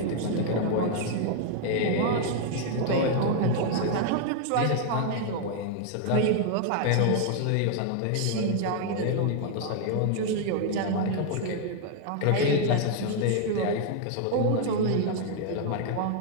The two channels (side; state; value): both; different; correlation 0.00